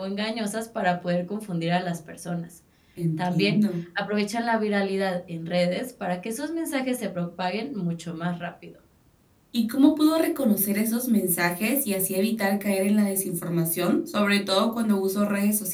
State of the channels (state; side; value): identical; both; correlation 1.00